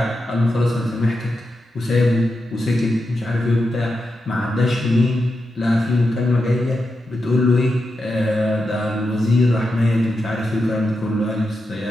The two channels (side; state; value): both; normal; correlation 0.88